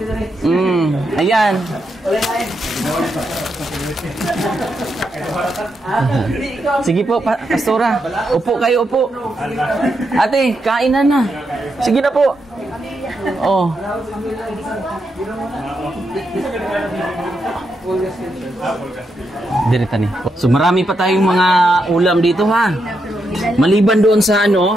Ayan. Sige po, Pastora. Upo kayo, upo. Ate, kainan na. Sige na po. Oh. Direta ni. So marami pa tayong mga ulam dito, ha. Maliban doon sa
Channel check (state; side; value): normal; both; correlation 0.82